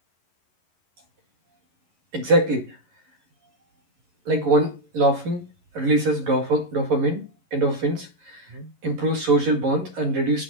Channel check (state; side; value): late; left; 11 ms